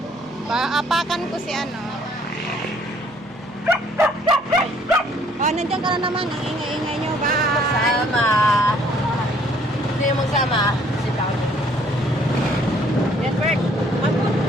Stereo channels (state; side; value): noise; right; hum, 25 dB below the sound